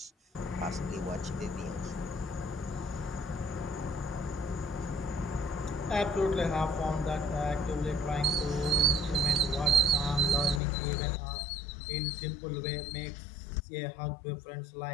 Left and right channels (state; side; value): drops out; right; at 10.6 s